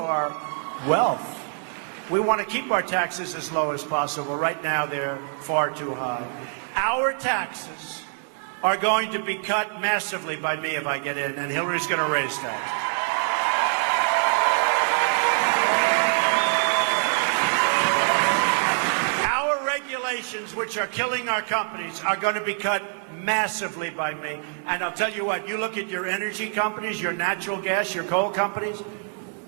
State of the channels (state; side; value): silent; left; 62 dB below the other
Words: wealth. We want to keep our taxes as low as possible. Right now, they're far too high. Our taxes are going to be cut massively by me if I get in, and Hillary's going to raise that. Which are killing our companies are going to be cut massively by me. And I'll tell you what, you look at your energy companies, your natural gas, your coal companies,